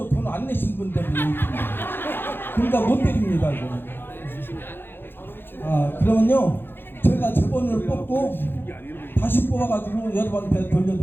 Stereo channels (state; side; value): late; right; 0.10 ms